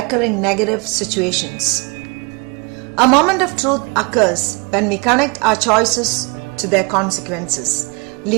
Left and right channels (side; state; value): left; quieter; 30.8 dB